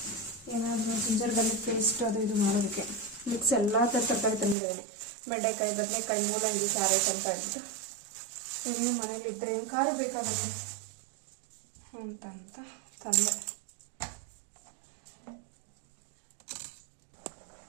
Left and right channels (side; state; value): left; drops out; at 4.5 s